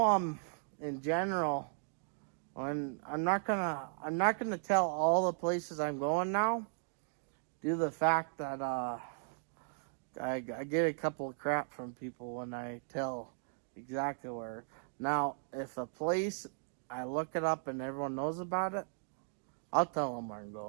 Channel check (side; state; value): left; silent; digital silence